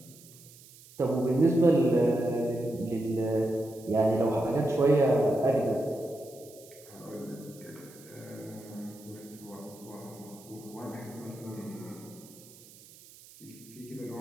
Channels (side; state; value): right; noise; hiss, 22 dB below the sound